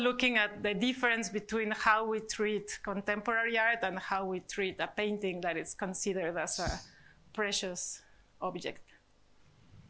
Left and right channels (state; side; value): identical; both; correlation 1.00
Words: at the difference between how we treat contemporary art and how we treat a painting that is considered as a precious object.